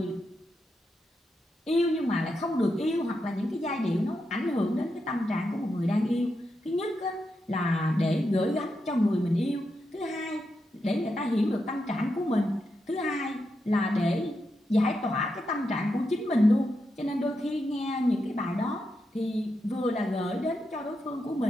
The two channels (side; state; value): both; normal; correlation 0.85